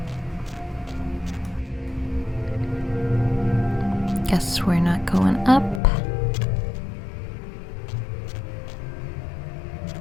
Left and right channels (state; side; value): drops out; right; at 5.8 s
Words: Guess we're not going up.